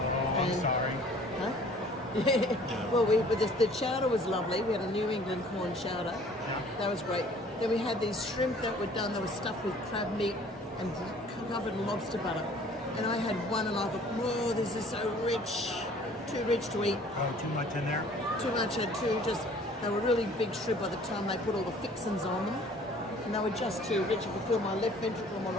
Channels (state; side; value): normal; both; correlation 0.53